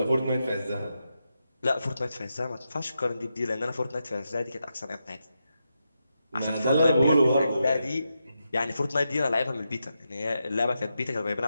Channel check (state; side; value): inverted; both; correlation -0.86